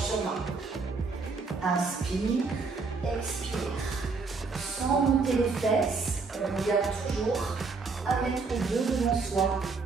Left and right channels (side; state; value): left; quieter; 4.3 dB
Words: sur main. Inspire, expire. Sans monter les fesses, on regarde toujours à mettre les deux devant soi.